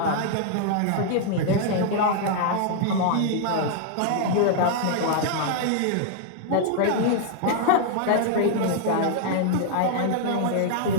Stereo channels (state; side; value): different; both; correlation -0.01